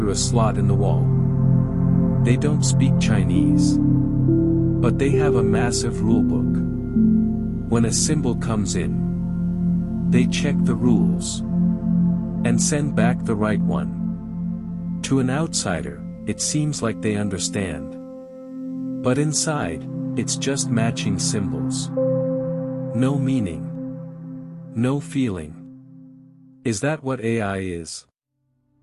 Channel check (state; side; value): identical; both; correlation 1.00